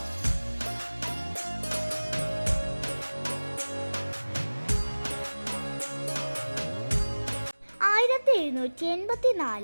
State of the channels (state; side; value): inverted; both; correlation -1.00